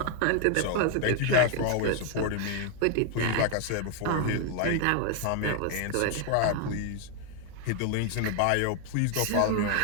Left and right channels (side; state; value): both; different; correlation 0.00